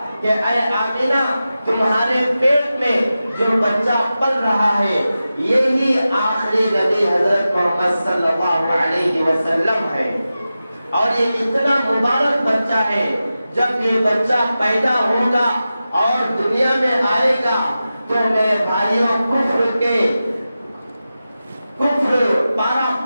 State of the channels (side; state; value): both; inverted; correlation -0.93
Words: کہ اے آمنہ تمہارے پیٹ میں جو بچہ پل رہا ہے یہی آخری نبی حضرت محمد صلی اللہ علیہ وسلم ہے، اور یہ اتنا مبارک بچہ ہے، جب یہ بچہ پیدا ہوگا اور دنیا میں آئے گا تو میرے بھائیوں کفر پارا